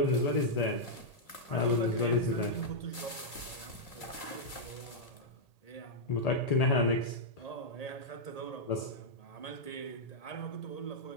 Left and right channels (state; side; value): late; right; 2.1 ms